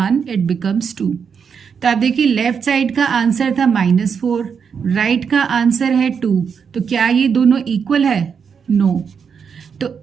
it becomes 2। तो आप देखिए लेफ्ट साइड का आंसर था -4, राइट का आंसर है 2, तो क्या ये दोनों इक्वल है? नो। तो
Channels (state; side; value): quieter; left; 6.5 dB